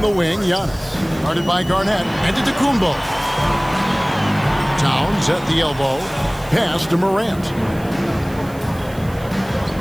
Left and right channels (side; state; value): right; noise; hiss, 22 dB below the sound